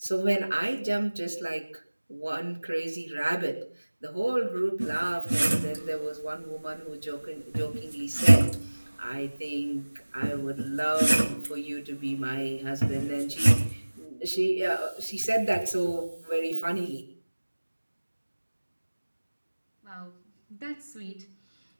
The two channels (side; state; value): both; inverted; correlation -1.00